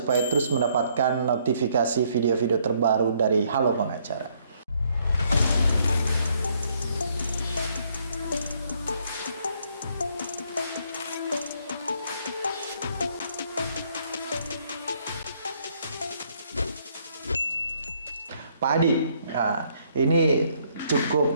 terus mendapatkan notifikasi video-video terbaru dari Halo Pengacara. Pak Adi, ini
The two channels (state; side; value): inverted; both; correlation -0.68